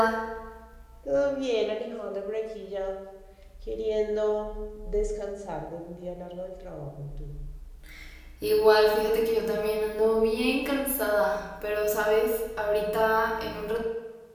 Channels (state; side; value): identical; both; correlation 1.00